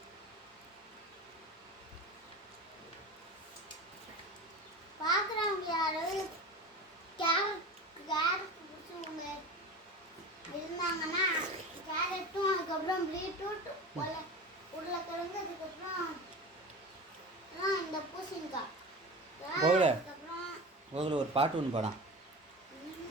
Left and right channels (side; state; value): both; normal; correlation 0.31